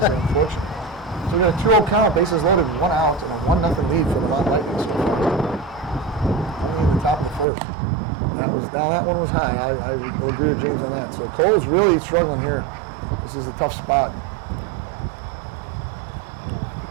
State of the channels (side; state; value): left; drops out; at 7.5 s